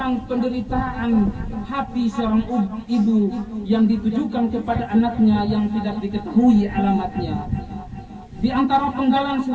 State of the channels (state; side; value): identical; both; correlation 1.00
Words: penderitaan hati seorang ibu yang ditujukan kepada anaknya yang tidak diketahui alamatnya. Di antara penggalan